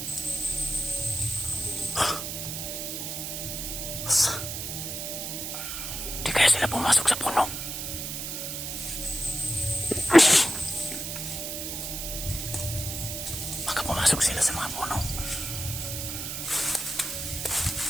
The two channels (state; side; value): noise; right; hiss, 5 dB below the sound